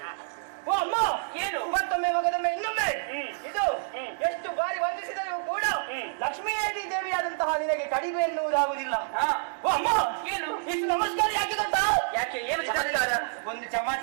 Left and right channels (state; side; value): silent; left; digital silence